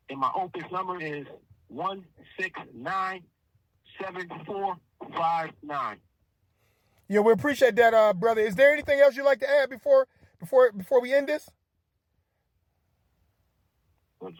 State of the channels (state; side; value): identical; both; correlation 1.00